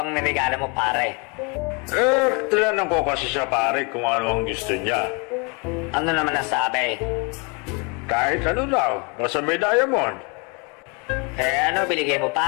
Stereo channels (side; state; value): right; quieter; 32.3 dB